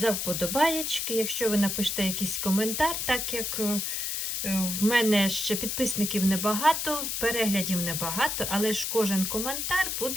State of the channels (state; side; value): noise; left; hiss, 2 dB below the sound